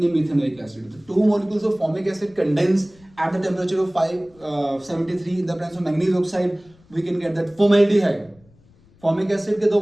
methanoic acid। तो 2 molecules of formic acid condense at the temperature of 573 in the presence of manganese oxide, we can get that formaldehyde। Formic acid के 2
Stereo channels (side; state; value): left; noise; rumble, 29 dB below the sound